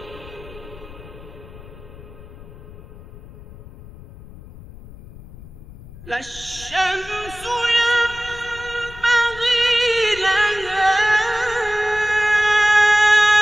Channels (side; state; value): left; noise; rumble, 18 dB below the sound